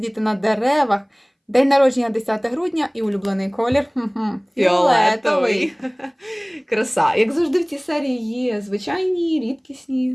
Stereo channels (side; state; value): both; identical; correlation 1.00